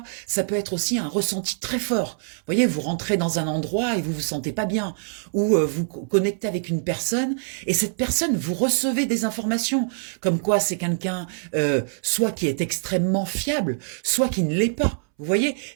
Ça peut être aussi un ressenti très fort. Vous voyez, vous rentrez dans un endroit et vous vous sentez pas bien, ou vous connectez avec une personne et cette personne, vous recevez des informations comme quoi c'est quelqu'un soit qui est extrêmement fiable, soit qui ne l'est pas. Vous voyez,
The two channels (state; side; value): silent; left; 62 dB below the other